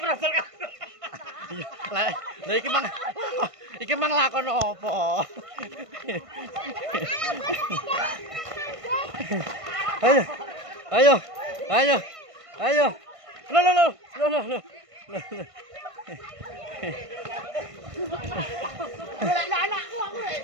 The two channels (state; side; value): late; left; 1.5 ms